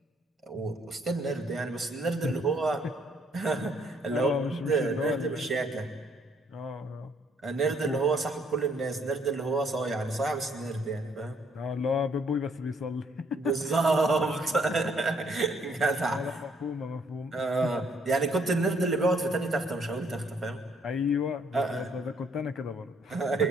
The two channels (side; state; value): both; normal; correlation 0.67